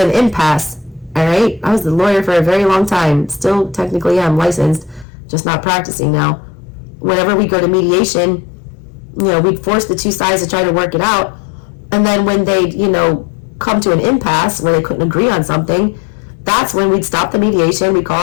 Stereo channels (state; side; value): drops out; right; at 5.1 s